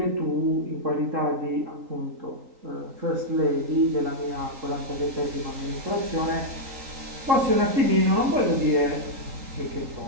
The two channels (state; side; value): late; left; 3.8 ms